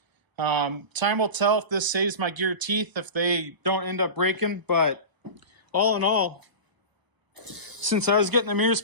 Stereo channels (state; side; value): late; left; 1.0 ms